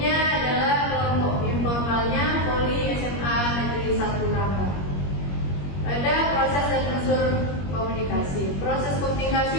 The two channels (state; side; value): late; right; 21 ms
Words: adalah kelompok informalnya Poli SMA Negeri 1 Rangga. Ada proses dan unsur komunikasi. Proses